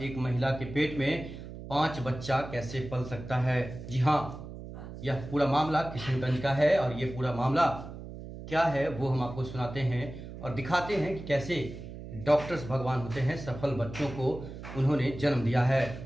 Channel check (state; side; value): noise; right; hum, 11 dB below the sound